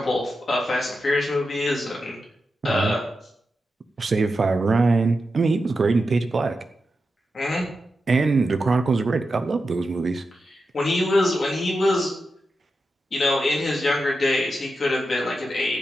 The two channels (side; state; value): both; normal; correlation 0.89